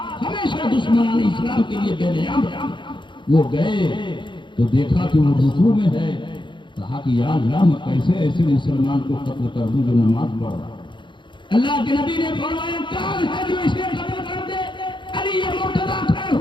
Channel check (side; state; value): right; late; 0.23 ms